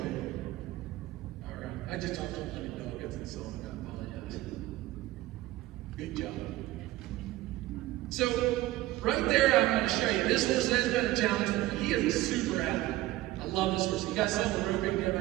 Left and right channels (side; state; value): left; quieter; 16.8 dB